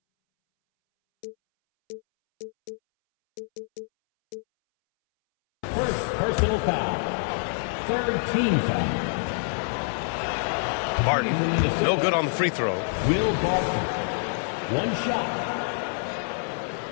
First personal foul. Third team foul. Barton, no good on the free throw. Will Barton. One shot.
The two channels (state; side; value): silent; right; 61 dB below the other